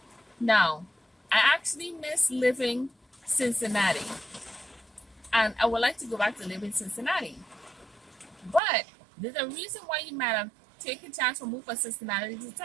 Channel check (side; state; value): left; drops out; at 8.6 s